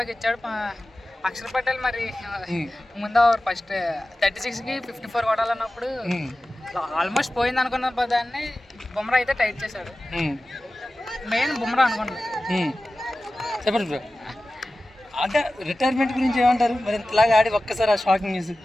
ఇచ్చాడు. అక్షర్ పటేల్ మరి ముందు ఫస్ట్ 36కి 54 కొట్టాలన్నప్పుడు ఆల్మోస్ట్ పోయింది అనుకున్న దాన్ని బుమ్రా అయితే టైట్ చేశాడు. మెయిన్ బుమ్రా అనుకున్నాను. చెప్పండి బ్రో, అదే రిటైర్మెంట్ గురించి ఏమంటారు మరి? ఇంతలాగా ఆడి ఒక్కసారి ఆ షాకింగ్ న్యూస్.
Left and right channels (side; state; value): both; normal; correlation 0.95